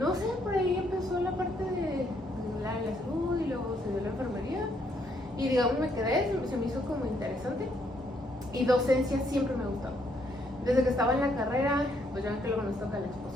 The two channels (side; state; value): both; normal; correlation 0.71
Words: sé, por ahí empezó la parte de la salud y luego se dio la enfermería y digamos me quedé, se me hizo como interesante, y docencia siempre me gustó. Desde que estaba en la carrera, pues ya ven que luego nos toca la